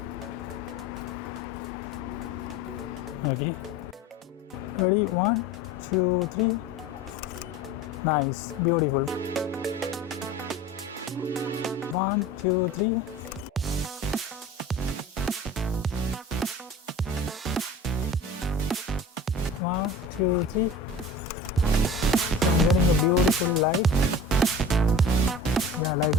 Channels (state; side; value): normal; both; correlation 0.38